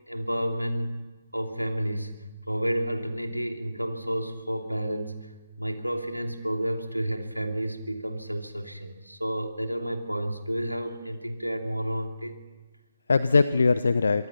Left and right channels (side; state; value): both; inverted; correlation -0.93